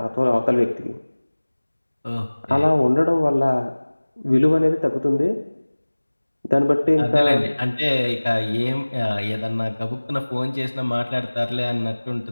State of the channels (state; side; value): inverted; both; correlation -1.00